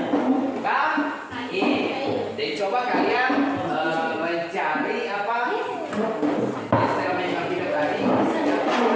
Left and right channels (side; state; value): both; identical; correlation 1.00